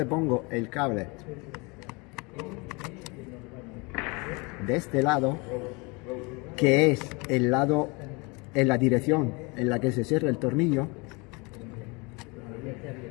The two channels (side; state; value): right; quieter; 28.2 dB